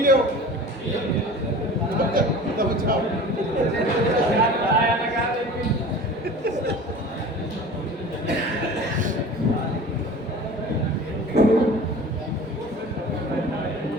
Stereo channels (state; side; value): normal; both; correlation 0.39